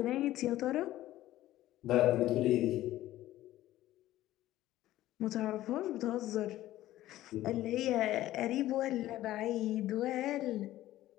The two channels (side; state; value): right; quieter; 14.8 dB